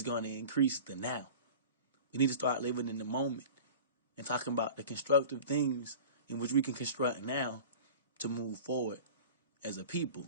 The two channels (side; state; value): both; inverted; correlation -0.39